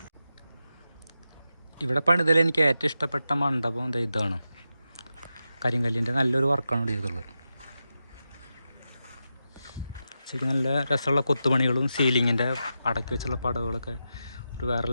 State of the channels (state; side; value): inverted; both; correlation -0.90